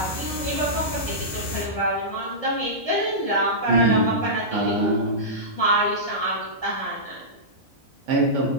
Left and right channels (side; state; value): both; normal; correlation -0.15